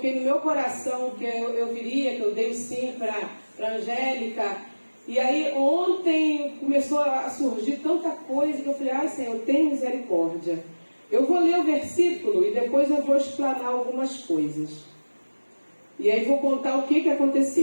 no meu coração que eu viria, que eu dei o sim para Angélica, e aí ontem começou a surgir tanta coisa que eu falei, Senhor, tem misericórdia. Eu vou ler o versículo e depois eu vou explanar algumas coisas. E aí vou contar o que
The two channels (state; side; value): inverted; both; correlation -1.00